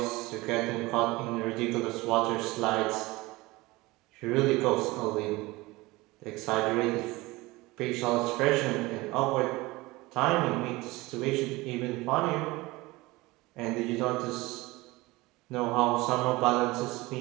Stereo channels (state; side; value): quieter; left; 21.2 dB